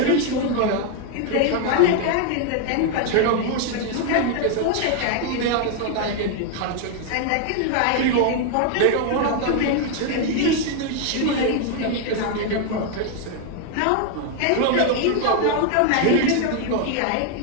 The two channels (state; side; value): different; both; correlation 0.01